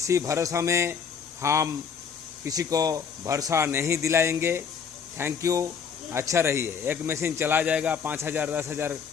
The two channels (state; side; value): quieter; right; 6.6 dB